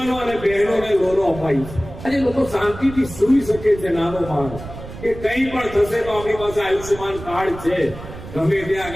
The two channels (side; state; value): right; noise; rumble, 13 dB below the sound